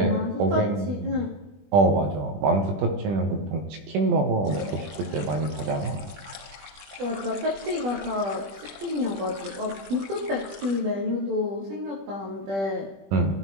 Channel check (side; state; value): left; late; 20 ms